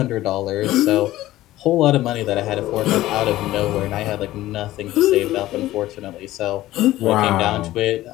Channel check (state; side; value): quieter; right; 15.7 dB